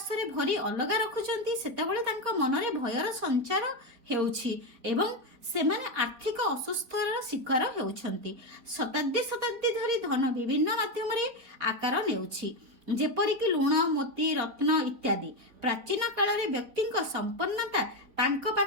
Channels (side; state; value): left; late; 4.3 ms